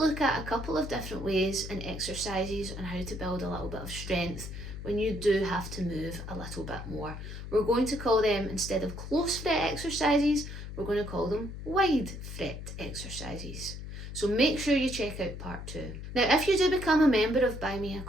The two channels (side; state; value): left; noise; hum, 9 dB below the sound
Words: at a couple of different ways and exercises on how to build a little bit of strength when you do have to move a little bit more. We're going to call them, instead of close fret exercises, we're going to call them wide fret exercises. So make sure you check out part 2. Now if you do become a member of Buy Me a